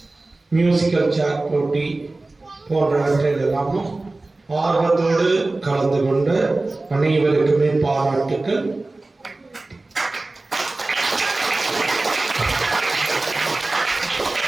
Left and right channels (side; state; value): left; quieter; 3.1 dB